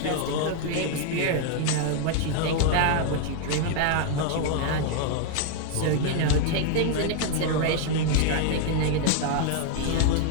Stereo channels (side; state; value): both; different; correlation 0.00